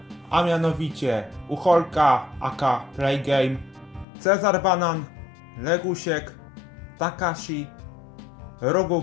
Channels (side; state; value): right; drops out; at 4.0 s